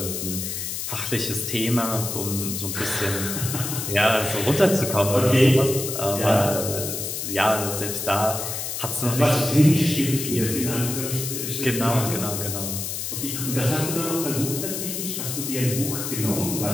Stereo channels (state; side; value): noise; left; hiss, 4 dB below the sound